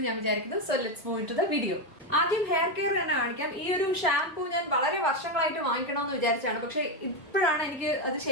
ഞാൻ വിചാരിക്കുന്നു. So let's move to the video. ആദ്യം ഹെയർ കെയർ തന്നെ കാണിക്കാം. ഈ ഒരു ഷാംപൂ ഞാൻ വളരെ വർഷങ്ങളായിട്ട് വാങ്ങിക്കണമെന്ന് വിചാരിച്ചാണ്, പക്ഷെ ഇപ്പോഴാണ് എനിക്ക് അത്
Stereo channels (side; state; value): both; normal; correlation 0.08